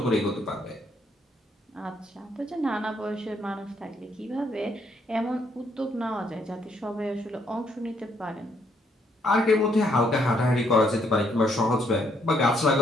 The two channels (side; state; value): both; normal; correlation 0.71